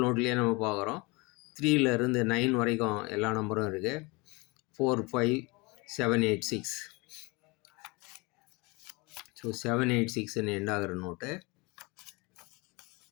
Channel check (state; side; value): quieter; right; 26.2 dB